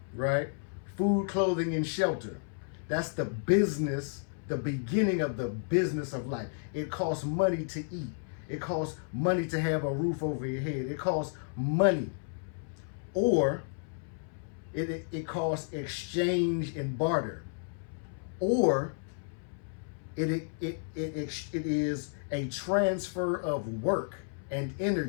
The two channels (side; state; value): right; silent; 56 dB below the other